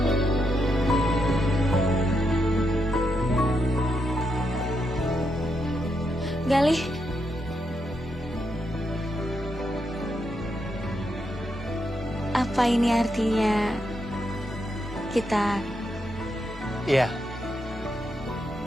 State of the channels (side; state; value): both; normal; correlation 0.81